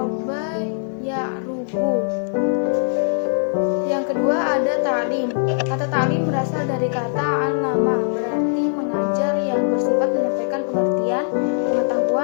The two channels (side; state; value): right; silent; digital silence